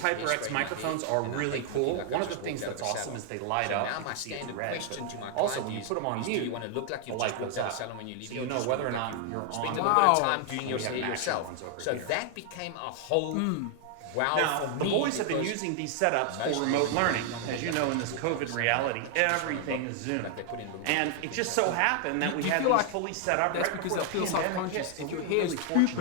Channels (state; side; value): different; both; correlation 0.00